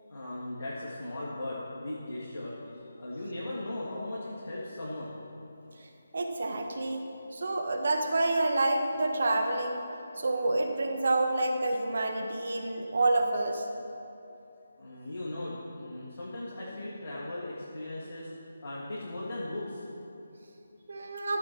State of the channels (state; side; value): inverted; both; correlation -0.90